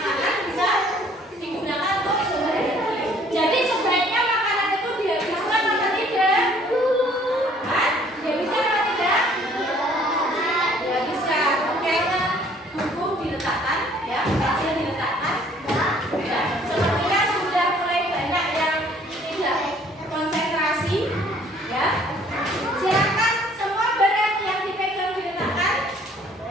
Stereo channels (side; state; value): both; normal; correlation 0.58